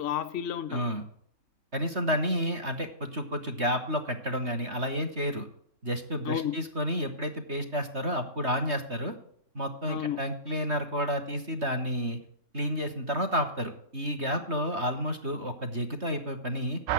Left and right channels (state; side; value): late; left; 3.2 ms